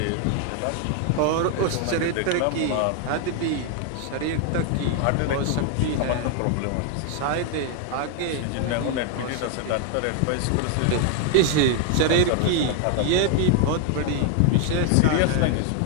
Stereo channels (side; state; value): both; different; correlation 0.00